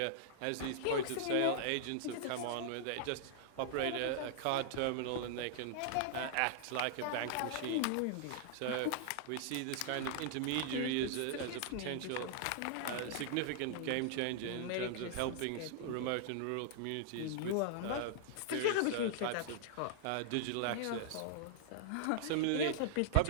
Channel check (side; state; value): both; different; correlation -0.01